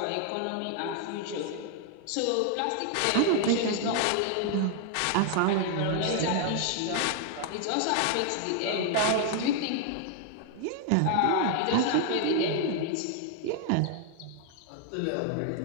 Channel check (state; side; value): different; both; correlation 0.00